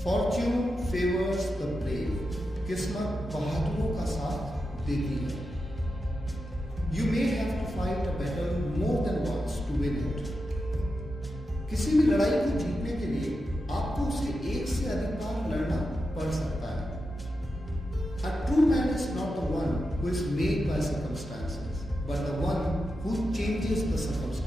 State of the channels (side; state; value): both; normal; correlation 0.89